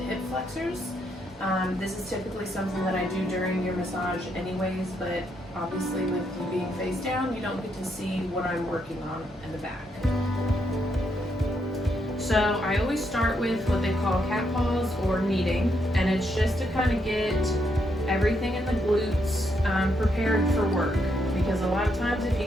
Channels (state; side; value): normal; both; correlation 0.77